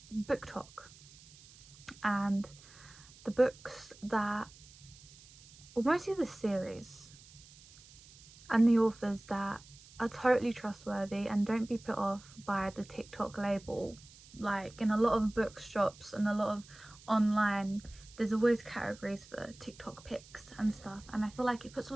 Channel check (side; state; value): right; noise; hiss, 22 dB below the sound